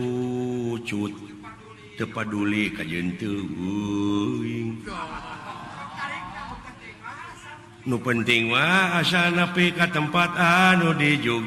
teu paduli ka jeunteung euing nu penting mah asal nepi ka tempat anu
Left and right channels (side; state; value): both; identical; correlation 1.00